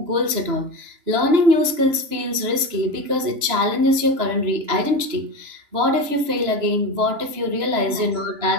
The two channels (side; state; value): left; late; 3.0 ms